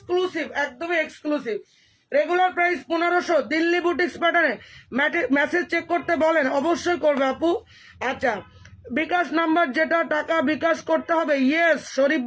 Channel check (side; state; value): both; identical; correlation 1.00